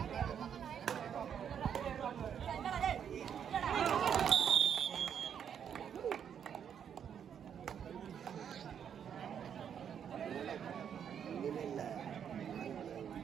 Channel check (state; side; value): quieter; left; 8.3 dB